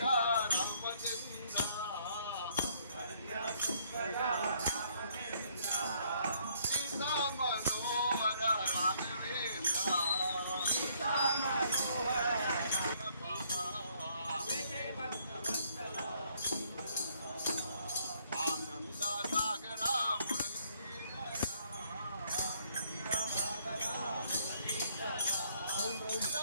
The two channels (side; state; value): both; inverted; correlation -0.66